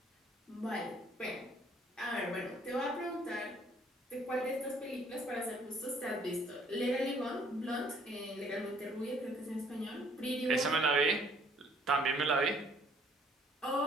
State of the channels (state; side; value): normal; both; correlation 0.61